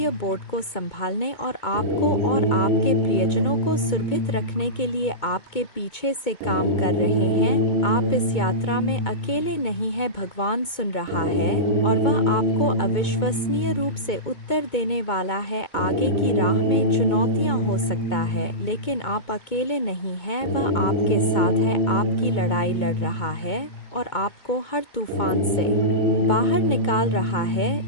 बोर्ड को संभालने और आपको और आपके प्रियजनों को सुरक्षित रखने के लिए आपके पीछे से काम कर रहे हैं। आप इस यात्रा में अकेले नहीं हैं, भगवान सुन रहा है और वह आपको अविश्वसनीय रूप से उत्तर देने वाला है। आगे की राह में चुनौतियाँ हो सकता है लेकिन आप अकेले नहीं हैं, वह आपके साथ है, आपकी लड़ाई लड़ रहा है और आपको हर तूफान से बाहर निकाल रहा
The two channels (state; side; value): late; right; 2.2 ms